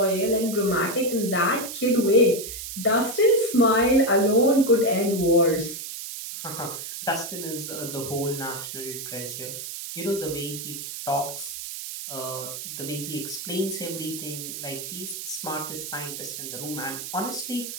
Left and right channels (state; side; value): noise; right; hiss, 8 dB below the sound